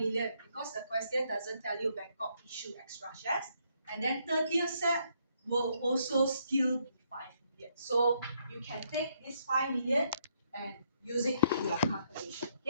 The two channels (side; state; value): both; inverted; correlation -0.74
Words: because the question doesn't tell you Bangkok issue extra shares. And then 30th Sep will also still be 5 million. So you can take this 5 million and use it in your calculation.